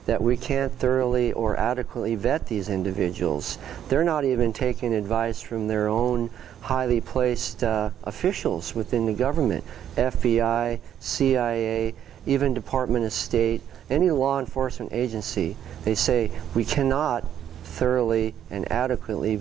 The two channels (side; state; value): left; quieter; 10.1 dB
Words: that we can't thoroughly or adequately vet these individuals. They're not even taking advice from their own highly placed officials within the government, FBI, CIA, even Department of State, any law enforcement agency. They say we cannot thoroughly and adequately